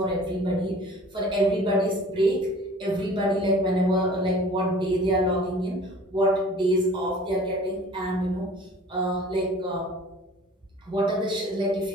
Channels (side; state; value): both; normal; correlation 0.47